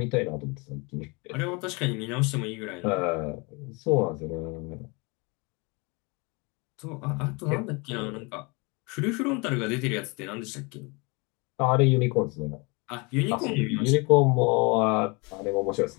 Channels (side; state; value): right; quieter; 29.0 dB